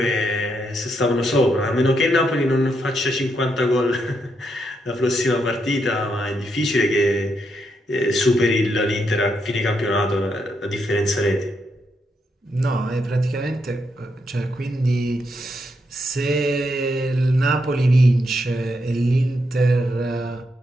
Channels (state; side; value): normal; both; correlation 0.80